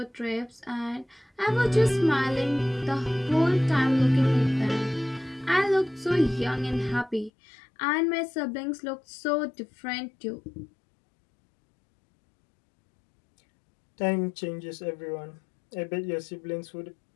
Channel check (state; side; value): drops out; right; at 7.3 s